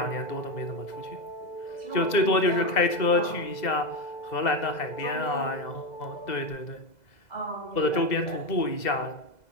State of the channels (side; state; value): right; late; 2.0 ms